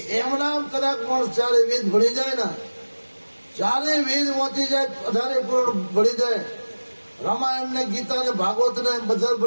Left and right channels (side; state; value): both; inverted; correlation -1.00